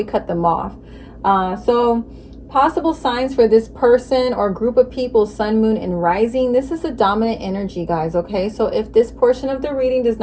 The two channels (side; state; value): both; identical; correlation 1.00